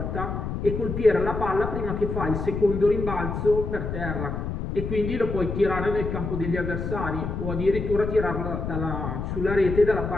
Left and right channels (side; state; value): left; noise; rumble, 4 dB below the sound